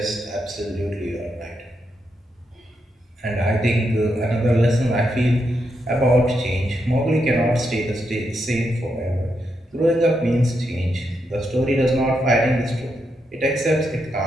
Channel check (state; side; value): normal; both; correlation 0.82